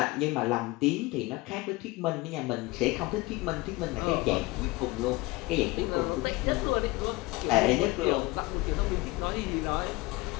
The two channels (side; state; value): right; quieter; 21.6 dB